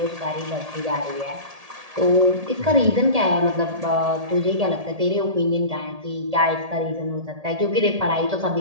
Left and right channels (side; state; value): left; late; 1.8 ms